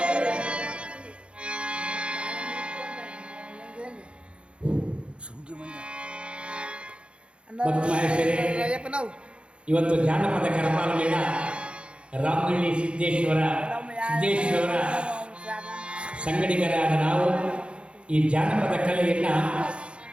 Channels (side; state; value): left; late; 0.057 ms